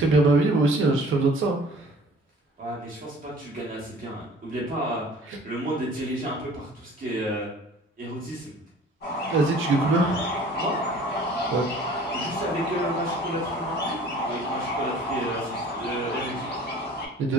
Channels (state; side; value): normal; both; correlation 0.50